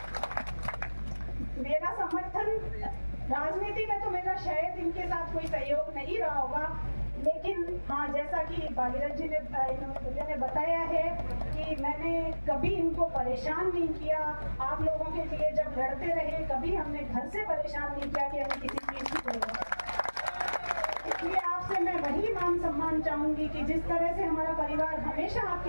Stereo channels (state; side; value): inverted; both; correlation -1.00